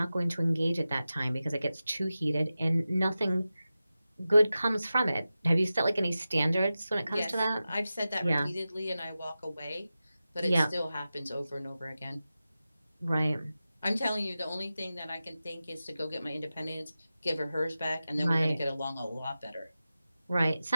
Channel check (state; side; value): inverted; both; correlation -0.94